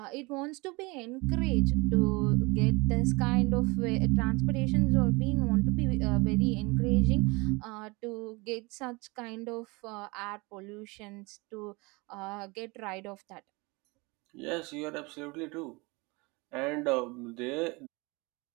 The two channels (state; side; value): quieter; left; 25.8 dB